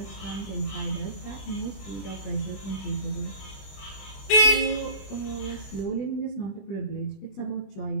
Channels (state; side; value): late; right; 21 ms